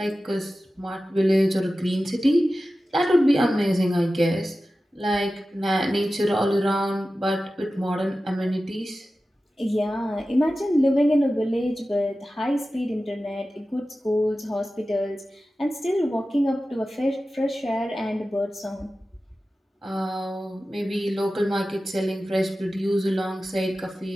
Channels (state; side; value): normal; both; correlation 0.94